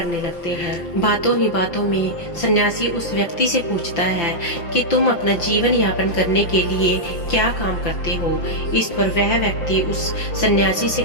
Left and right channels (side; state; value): right; late; 5.9 ms